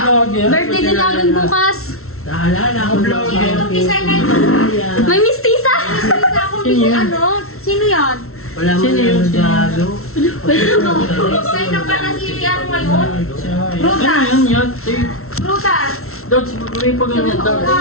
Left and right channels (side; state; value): right; late; 0.63 ms